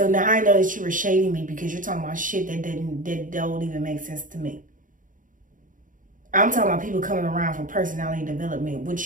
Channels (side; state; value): left; late; 0.38 ms